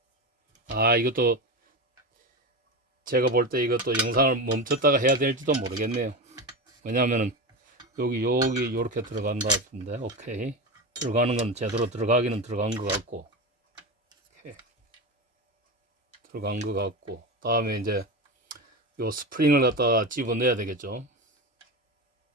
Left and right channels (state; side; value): normal; both; correlation 0.21